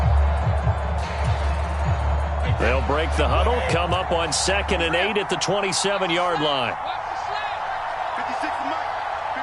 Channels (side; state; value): both; identical; correlation 1.00